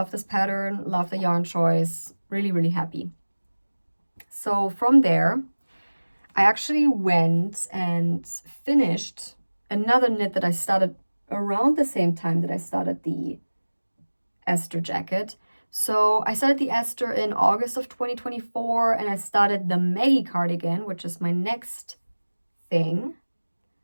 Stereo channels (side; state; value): both; inverted; correlation -1.00